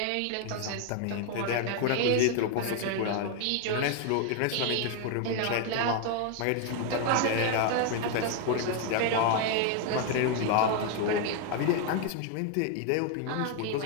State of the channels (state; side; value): different; both; correlation 0.01